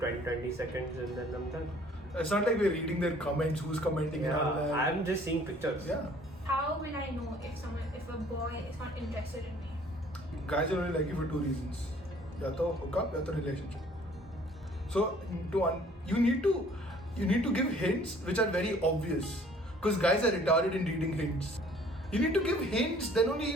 seconds and then I'm done. It's not like we're reading their comments, who's commenting and all Yeah, that. I'm just seeing pictures. Yeah. How will I know if a boy is not interested in me? Guys are only like you for two reasons. Ya to hook up, ya to relationship. So you need to give hints which are very obvious. Because guys are retarded in reading hints. You need to give hints, then only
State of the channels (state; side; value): normal; both; correlation 0.55